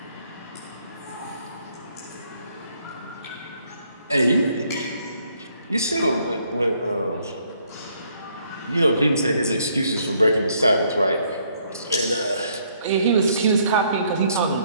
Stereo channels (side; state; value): both; inverted; correlation -0.68